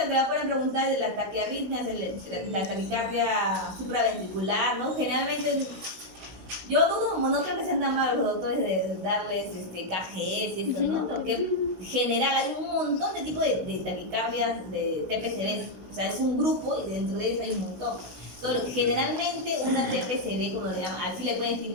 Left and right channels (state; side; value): late; left; 16 ms